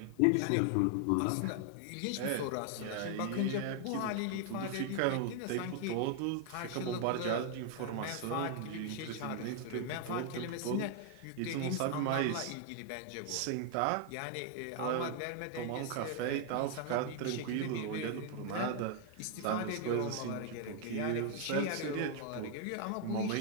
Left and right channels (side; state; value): both; different; correlation 0.00